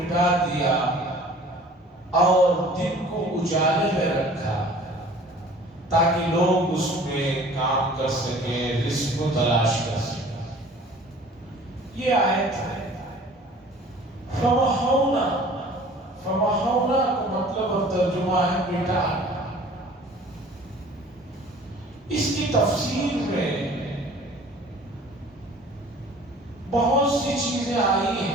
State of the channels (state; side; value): normal; both; correlation 0.49